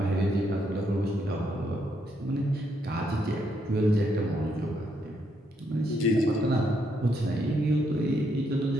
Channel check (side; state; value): both; normal; correlation 0.76